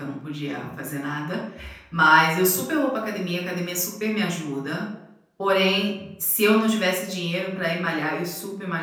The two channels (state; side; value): identical; both; correlation 1.00